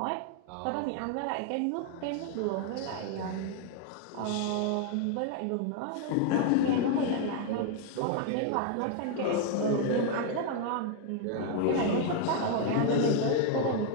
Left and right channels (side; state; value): both; different; correlation 0.00